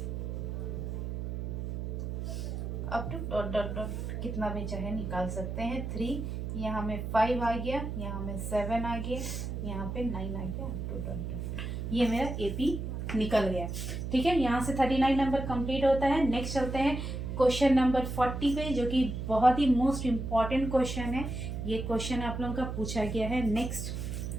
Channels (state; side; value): noise; right; hum, 4 dB below the sound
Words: up to dot dot dot, कितना भी चाहे निकाल सकते हैं। 3 यहाँ में 5 आ गया, यहाँ में 7 आ गया, यहाँ पे 9 आ गया, अप टू डॉट डॉट, ये मेरा AP निकल गया। ठीक है, यहाँ से 39 नंबर कंप्लीट होता है। नेक्स्ट चलते हैं क्वेश्चन नंबर 40 पे, जो कि बहुत ही मोस्ट इम्पॉर्टेंट क्वेश्चन है। ये क्वेश्चन आप लोगों का पूछा गया है। नेक्स्ट